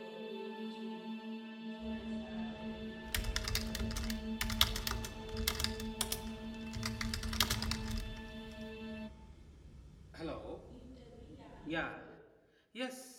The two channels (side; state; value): both; identical; correlation 1.00